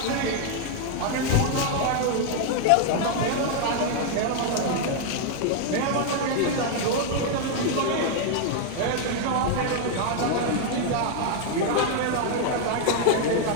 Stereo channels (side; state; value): both; different; correlation 0.00